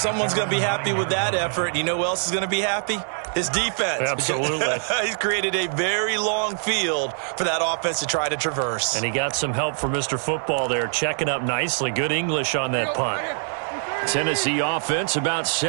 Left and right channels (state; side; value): silent; left; 63 dB below the other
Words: going to be happy with that effort. You know who else is going to be happy? His defense. Absolutely. He's created a very long field for that offense to try to traverse. And he got some help from Mr. Football there, checking up nicely. Good English on that punt. Tennessee offense about